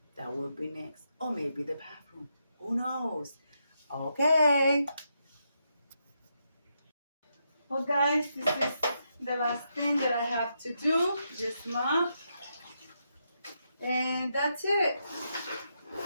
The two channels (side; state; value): both; inverted; correlation -0.82